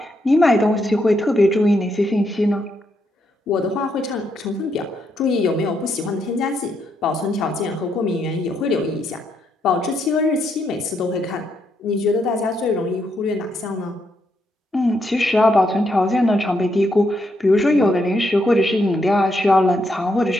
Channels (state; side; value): normal; both; correlation 0.78